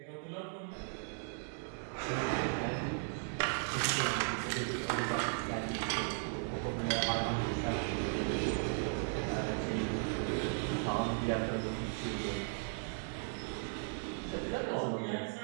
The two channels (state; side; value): silent; left; 53 dB below the other